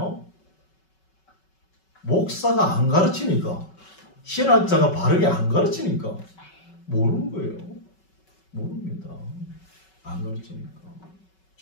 목사가 안 가르치니까, 신학자가 바르게 안 가르치니까 모르는 거예요. 모릅니다. 안 가르치니까.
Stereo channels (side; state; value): right; late; 5.3 ms